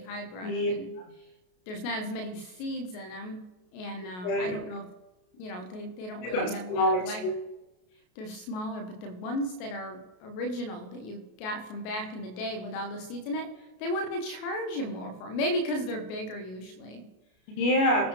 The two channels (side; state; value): right; late; 33 ms